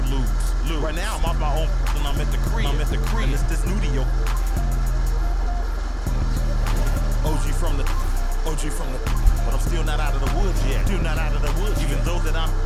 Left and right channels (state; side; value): identical; both; correlation 1.00